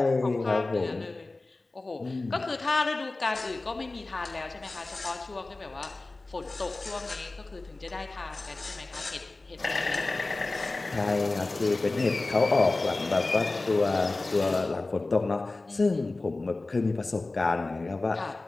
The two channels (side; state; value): right; quieter; 3.2 dB